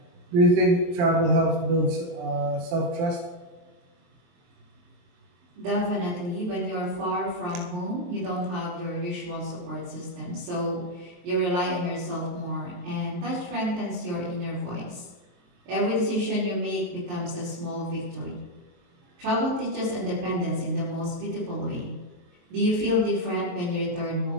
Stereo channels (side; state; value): left; late; 23 ms